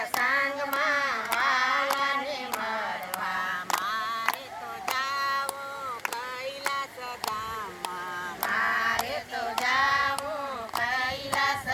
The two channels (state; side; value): identical; both; correlation 1.00